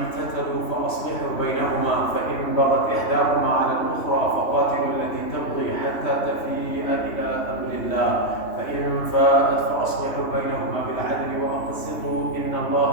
فأصلحوا بينهما فإن بغت إحداهما على الأخرى فقاتلوا التي تبغي حتى تفيء إلى أمر الله فإن فاءت فأصلحوا بينهما بالعدل وأقسطوا إن الله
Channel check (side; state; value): right; late; 3.1 ms